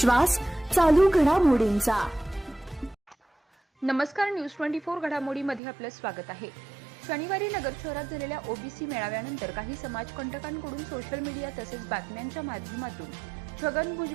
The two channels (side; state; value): left; drops out; at 5.6 s